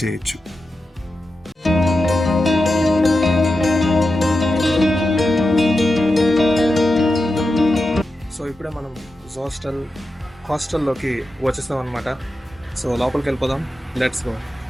చేయొచ్చు. సో ఇప్పుడే మనం హాస్టల్లోకి వచ్చేస్తాం అనమాట. సో లోపలికి వెళ్ళిపోదాం. Let's go.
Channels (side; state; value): both; normal; correlation 0.90